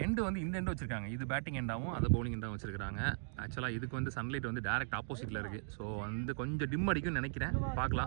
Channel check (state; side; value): silent; left; digital silence